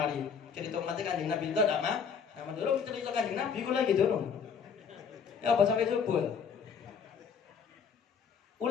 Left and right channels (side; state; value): right; quieter; 6.6 dB